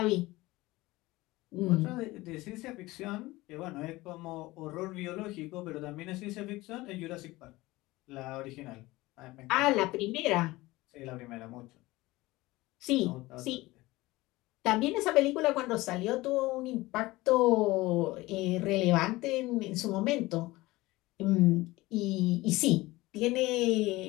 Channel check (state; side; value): quieter; right; 19.7 dB